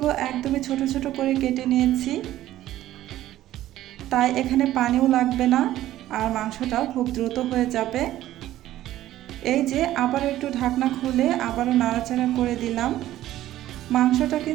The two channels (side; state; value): left; quieter; 14.0 dB